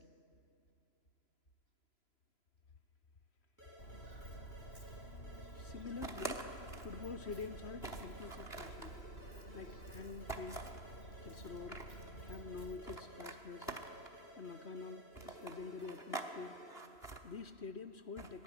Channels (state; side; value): late; right; 2.9 ms